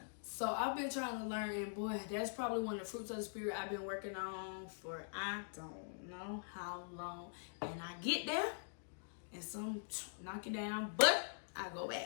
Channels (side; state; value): right; silent; digital silence